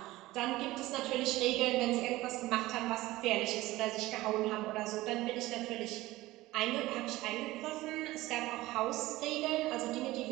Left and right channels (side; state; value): left; quieter; 18.0 dB